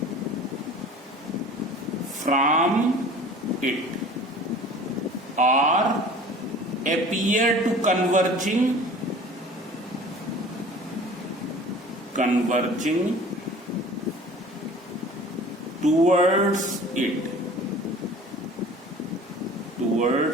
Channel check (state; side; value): normal; both; correlation 0.44